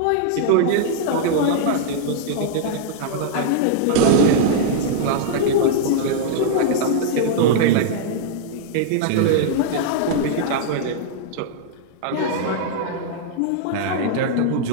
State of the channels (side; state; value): both; different; correlation -0.01